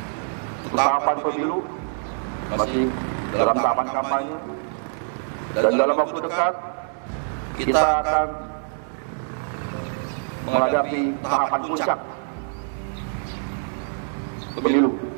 tahapan pemilu masih dalam tahapan kampanye, dan dalam waktu dekat kita akan menghadapi tahapan puncak pemilu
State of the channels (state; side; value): silent; left; digital silence